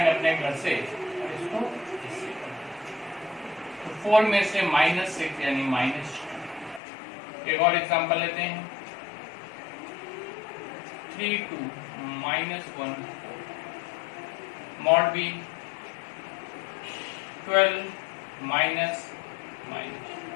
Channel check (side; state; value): right; drops out; at 6.8 s